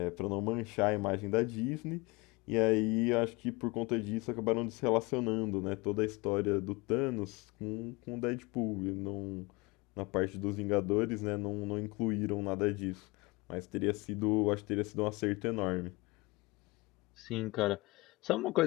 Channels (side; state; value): right; quieter; 24.3 dB